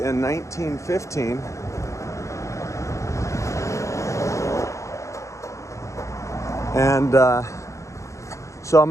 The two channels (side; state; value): right; late; 0.15 ms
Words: 1915. And so I'm